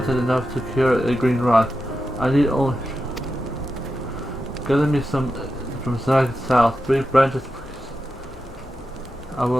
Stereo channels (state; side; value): normal; both; correlation 0.90